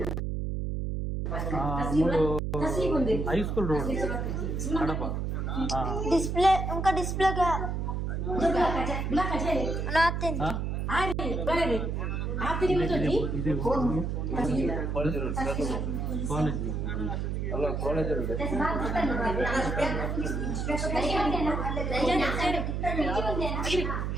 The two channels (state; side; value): noise; right; hum, 1 dB below the sound